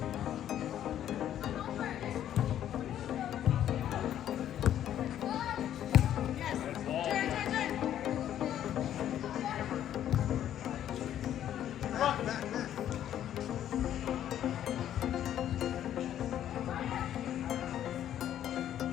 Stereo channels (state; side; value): quieter; right; 11.0 dB